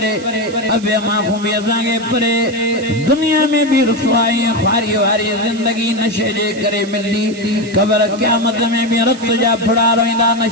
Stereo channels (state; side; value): noise; right; hiss, 18 dB below the sound